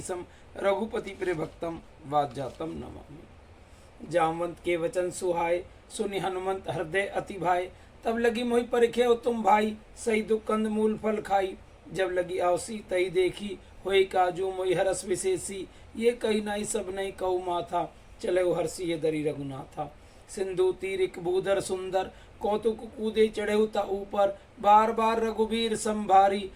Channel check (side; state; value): both; identical; correlation 1.00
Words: रघुपति प्रिय भक्तम वाज्जातम नमामि। जामवंत के वचन सुहाय सुनि हनुमंत हृदय अति भाई तब लगी मोहि परिखे तुम भाई सही दुख कंद मूल फल खाई जब लगी आवसी तई देखी होई काजू मोहि हरस विशेषी ये कही नाई सब नहीं कहु माथा चले हर्षि ये दरी रघुनाथा सिंधु तीरिक भूधर सुंदर कौतुक कूदे चढ़े ता ऊपर बार बार रघुवीर संभारी